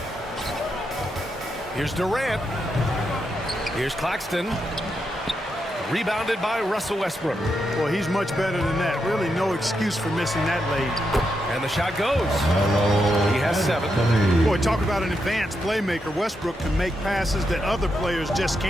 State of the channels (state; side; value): normal; both; correlation 0.84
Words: Here's Durant. Here's Claxton. Rebounded by Russell Westbrook. Well, he's much better than that. Really no excuse for missing that lead. And the shot goes. He has 7. Boy, talk about an advanced playmaker. Westbrook can make passes that other players just